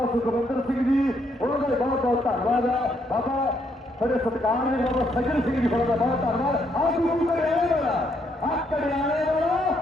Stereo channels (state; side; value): normal; both; correlation 0.73